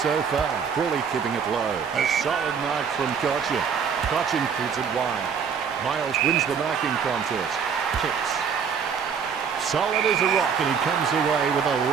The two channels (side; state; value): left; quieter; 6.7 dB